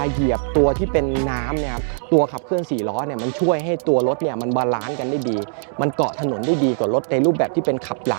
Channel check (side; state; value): left; silent; digital silence